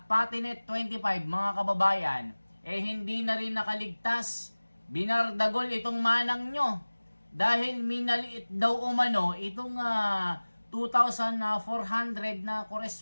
pati net 25, mga kababayan, hindi na rin nakaligtas. Binardagol itong manang nyo. Dahil minaliit daw umano itong 2,400 na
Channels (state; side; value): inverted; both; correlation -1.00